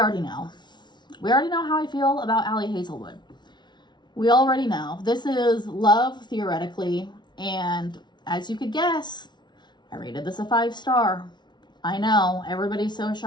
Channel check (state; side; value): late; right; 0.21 ms